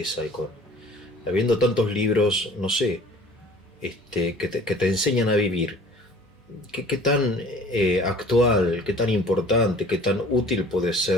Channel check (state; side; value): normal; both; correlation 0.49